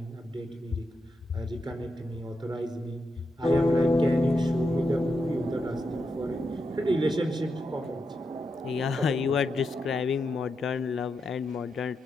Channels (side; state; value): both; normal; correlation 0.85